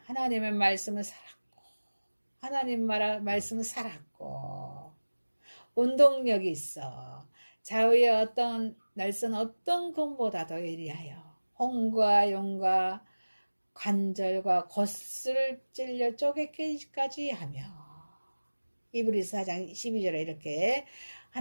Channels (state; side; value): inverted; both; correlation -1.00